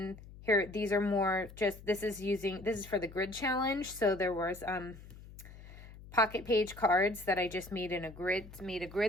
here, these are more just, this is for the grid challenge. So there was pocket page cards that I just made in a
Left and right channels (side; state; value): left; noise; hum, 17 dB below the sound